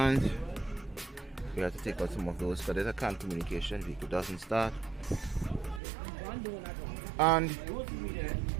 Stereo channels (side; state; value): left; drops out; at 5.8 s